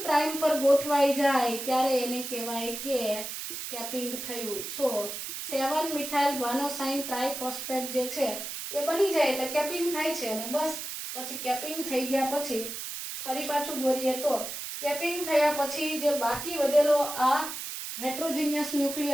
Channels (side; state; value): right; noise; hiss, 7 dB below the sound